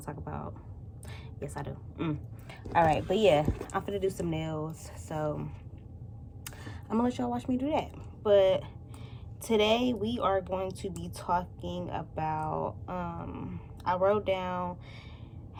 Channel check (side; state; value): both; identical; correlation 1.00